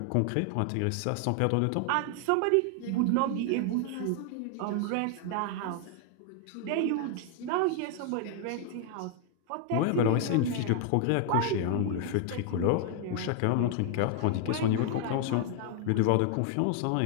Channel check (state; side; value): different; both; correlation 0.00